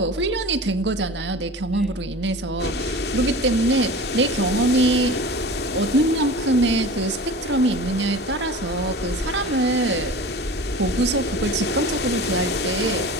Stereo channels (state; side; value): normal; both; correlation 0.36